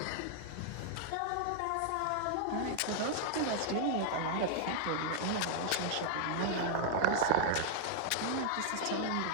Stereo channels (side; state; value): both; different; correlation -0.01